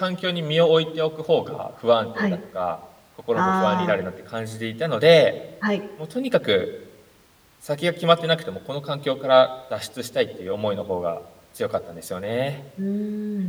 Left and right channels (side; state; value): both; identical; correlation 1.00